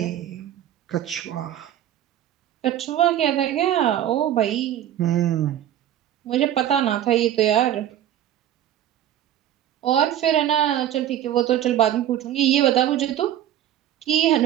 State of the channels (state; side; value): quieter; left; 11.5 dB